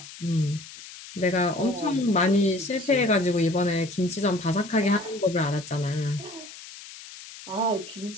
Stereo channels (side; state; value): left; noise; hiss, 16 dB below the sound